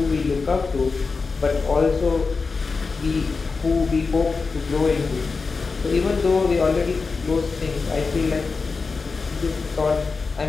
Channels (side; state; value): right; quieter; 4.4 dB